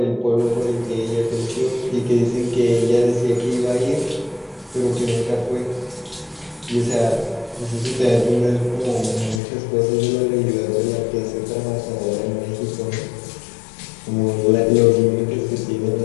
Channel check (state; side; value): drops out; right; at 9.4 s